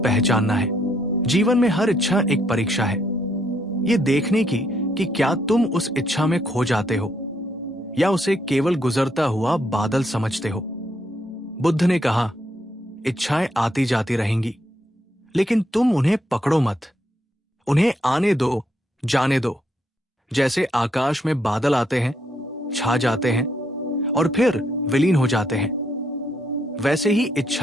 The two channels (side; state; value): both; normal; correlation 0.74